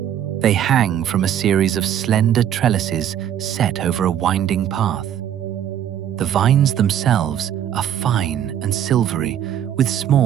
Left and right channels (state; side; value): quieter; left; 10.2 dB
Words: They hang from a series of slender trellises set over a winding path. The vines themselves are fine and silvery, with